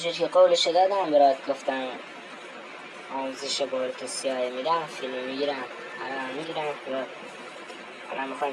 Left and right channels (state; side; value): identical; both; correlation 1.00